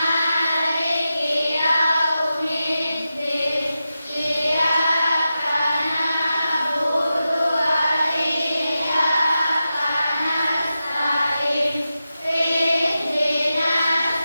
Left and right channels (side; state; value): both; inverted; correlation -0.91